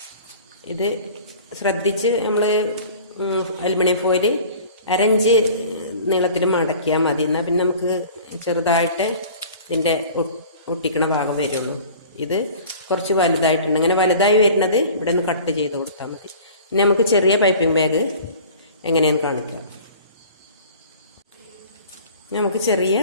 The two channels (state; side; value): inverted; both; correlation -0.45